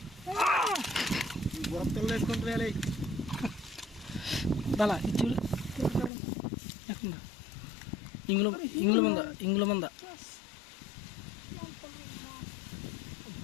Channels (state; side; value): drops out; right; at 6.1 s